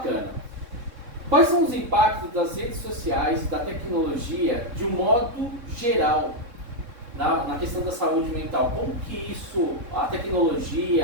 Quais são os impactos das redes sociais e da tecnologia de um modo geral na questão da saúde mental? Como que isso, a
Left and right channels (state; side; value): late; left; 3.6 ms